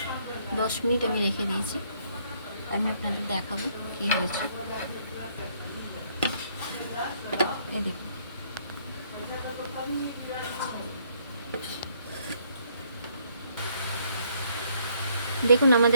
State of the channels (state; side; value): inverted; both; correlation -0.67